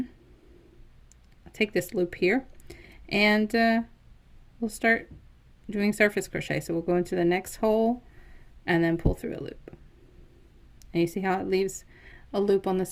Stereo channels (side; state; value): both; identical; correlation 1.00